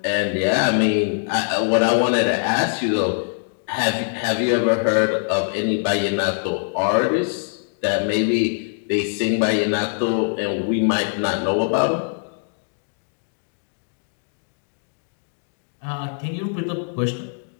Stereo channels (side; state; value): right; silent; digital silence